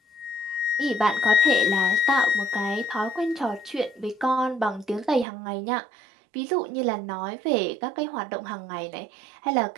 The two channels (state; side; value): drops out; left; at 5.2 s